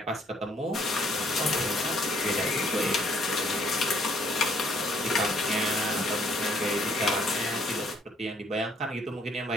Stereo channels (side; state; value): both; normal; correlation 0.64